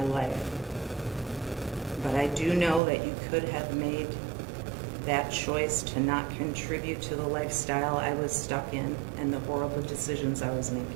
life. But I do know that you could have made that choice to not contribute to the lifestyle I was stuck in and the horrible decisions I was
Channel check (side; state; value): left; drops out; at 2.8 s